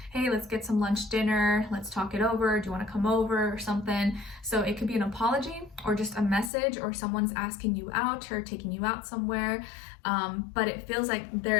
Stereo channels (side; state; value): right; drops out; at 6.5 s